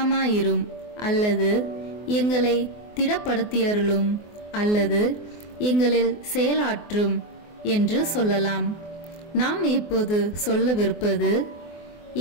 அல்லது எங்களை திடப்படுத்தியருளும் அல்லது எங்களில் செயலாற்றும் என்று சொல்லலாம். நாம் இப்போது சொல்லவிருப்பது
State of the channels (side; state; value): right; late; 24 ms